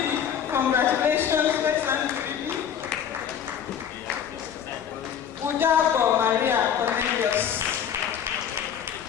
Congratulations. Where's Andrew Phoebe? Udabo Maria Cornelius.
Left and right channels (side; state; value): right; quieter; 8.7 dB